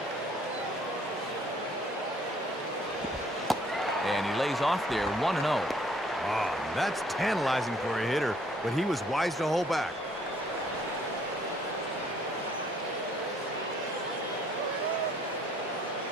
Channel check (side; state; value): both; normal; correlation 0.62